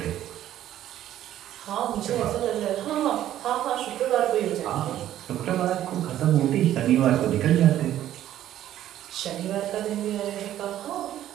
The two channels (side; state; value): left; quieter; 12.3 dB